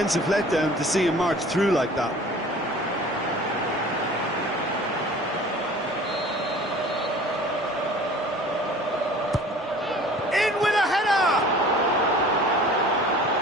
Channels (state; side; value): normal; both; correlation 0.46